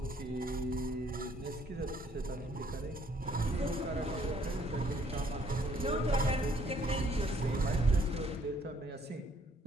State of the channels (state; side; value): normal; both; correlation 0.64